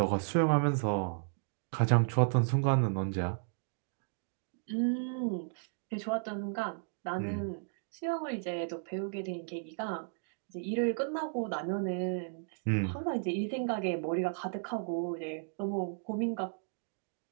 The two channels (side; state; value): left; silent; digital silence